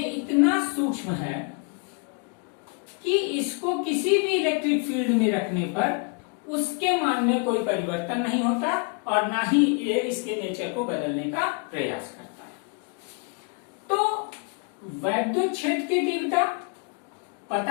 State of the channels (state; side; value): quieter; right; 34.0 dB